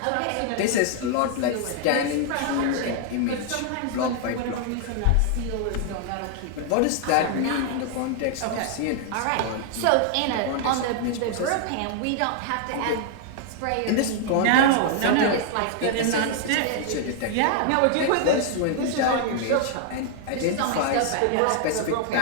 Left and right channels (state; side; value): different; both; correlation 0.00